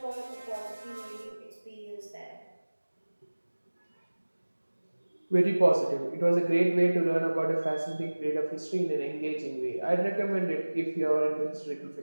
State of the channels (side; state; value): both; inverted; correlation -1.00